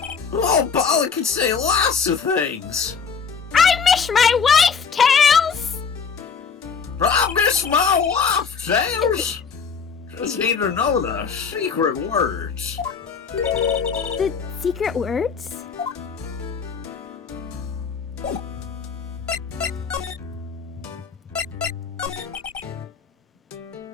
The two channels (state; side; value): quieter; right; 6.0 dB